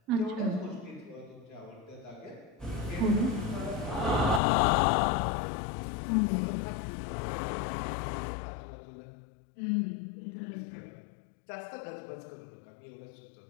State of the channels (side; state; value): right; drops out; at 4.4 s